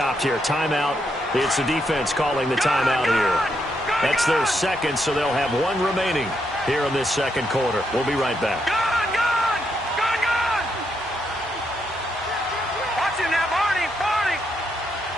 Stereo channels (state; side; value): normal; both; correlation 0.79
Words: here. Timeout. It's the defense calling the timeout here. That's their second, so they'll have one remaining here in this second quarter. We'll be right back. Watch it now, Barney.